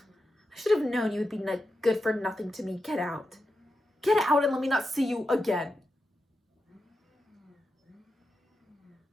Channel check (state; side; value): normal; both; correlation 0.89